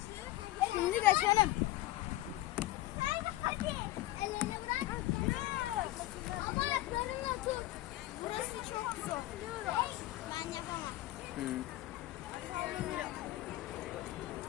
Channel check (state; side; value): quieter; right; 16.5 dB